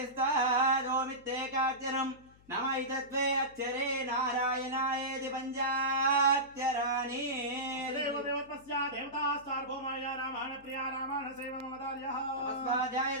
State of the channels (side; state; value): left; noise; hum, 26 dB below the sound